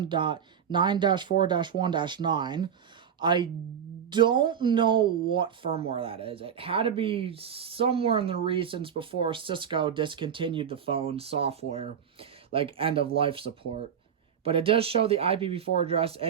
I don't know what firmware that is. It had to be somewhere in the recents before Cisco discontinued the phone software, like end-of-life support. But it does show the IPv4 address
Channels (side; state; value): left; quieter; 8.1 dB